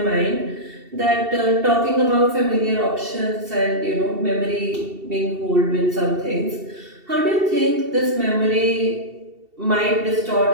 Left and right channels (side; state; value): left; late; 2.7 ms